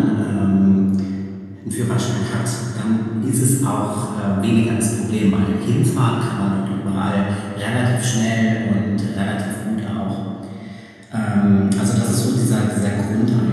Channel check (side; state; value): both; identical; correlation 1.00